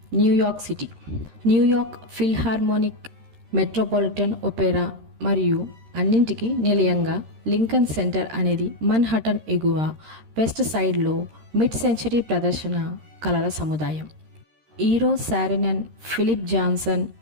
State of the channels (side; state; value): left; late; 13 ms